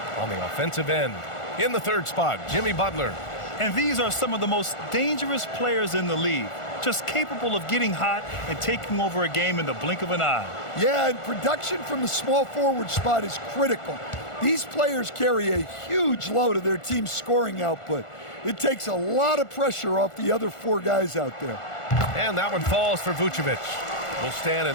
on the offensive end. In the third spot, Jimmy Butler. And these are some of the most dangerous players in the league, just capable of getting hot and taking over a game in the blink of an eye. Yeah, and production from the small forward spot is critical. These players carry a huge load of their team's scoring output. It takes a lot of pressure off the other four guys out there. And that one falls for Vucevic. Well, Stan,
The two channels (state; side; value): late; right; 1.4 ms